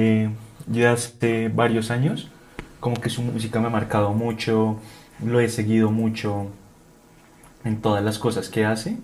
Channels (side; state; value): both; identical; correlation 1.00